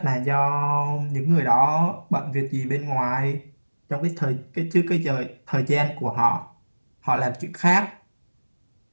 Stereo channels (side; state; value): both; inverted; correlation -1.00